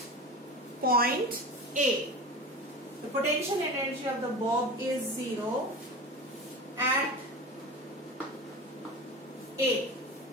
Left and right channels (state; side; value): normal; both; correlation 0.30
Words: point A. The potential energy of the bob is 0 at A.